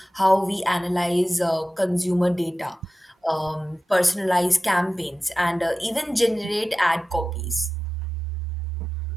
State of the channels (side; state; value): both; normal; correlation 0.94